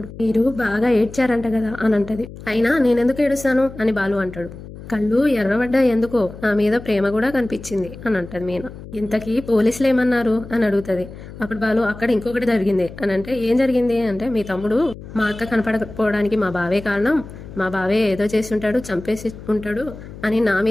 మీరు బాగా ఏడ్చారంట కదా అని అంటది. అయినా నేనెందుకు ఏడుస్తాను అని బాలు అంటాడు. కళ్ళు ఎర్రబడ్డా ఎందుకో నా మీద ప్రేమ కూడా కనిపించింది అని అంటది మీనా. ఇంతకీ పోలీసులు ఏమన్నారు అని అడుగుతుంది. అప్పుడు బాలు అక్కడ ఇంకొకటి జరిగింది అని అంటే ఏం జరిగింది అంటే మీ తమ్ముడు మా అక్క కనపడకపోవడానికి మా బావే కారణం, మా బావే ఏదో చేసి ఉంటాడు, చంపేసి ఉంటాడు అని నా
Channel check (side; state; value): left; noise; hum, 14 dB below the sound